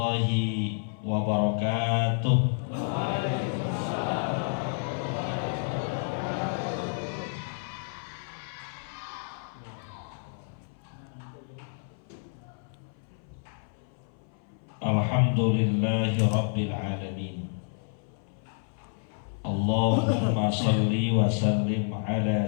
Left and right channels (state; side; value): silent; right; 57 dB below the other